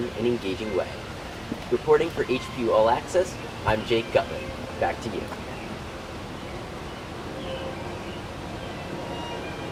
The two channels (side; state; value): both; identical; correlation 1.00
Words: and engaging way. Reporting for HPU All Access, I'm Jake Gutman. Back to you.